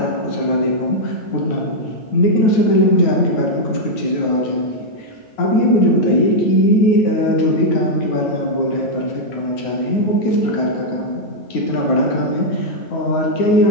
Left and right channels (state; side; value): late; right; 9.4 ms